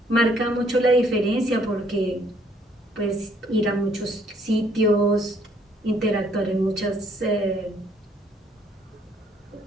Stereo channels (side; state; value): both; normal; correlation 0.65